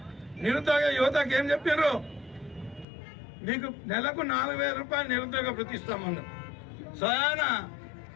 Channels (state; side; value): drops out; right; at 2.9 s